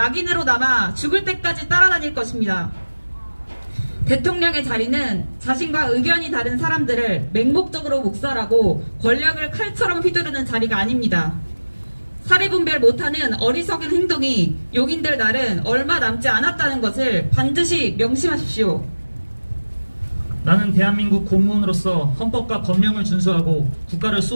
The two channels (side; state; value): both; inverted; correlation -1.00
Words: 남아 죽을 때까지 따라다닐 것입니다. 대통령의 자리는 자신과 의견이 다른 사람들을 맹목적으로 묵살하고 권력을 칼처럼 휘두르는 자리가 아닙니다. 사리분별 못하는 어리석은 행동이 용인될 날은 얼마 남지 않았다는 것을 반드시 명심하십시오. 나는 대한민국 공무원으로서 헌법과 법령을 준수하고 국가를